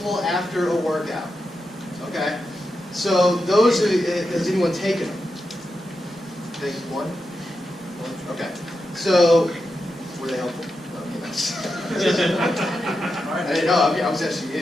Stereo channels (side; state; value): both; normal; correlation 0.88